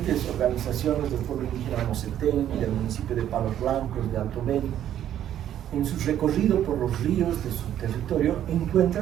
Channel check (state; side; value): quieter; left; 10.9 dB